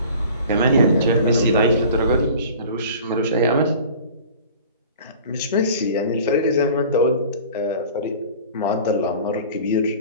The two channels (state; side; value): inverted; both; correlation -0.43